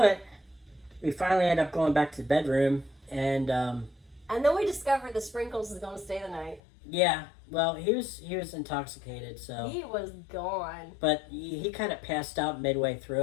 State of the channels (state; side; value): drops out; right; at 6.6 s